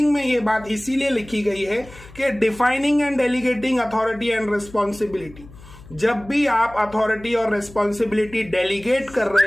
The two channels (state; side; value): noise; left; hum, 20 dB below the sound